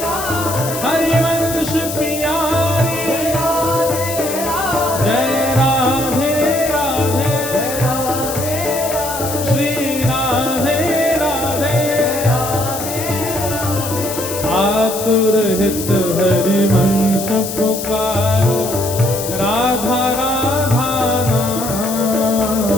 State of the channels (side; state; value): left; noise; hiss, 7 dB below the sound